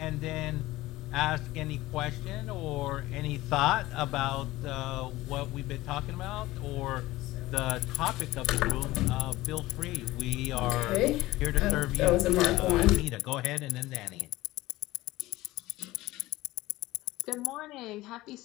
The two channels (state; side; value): quieter; right; 17.9 dB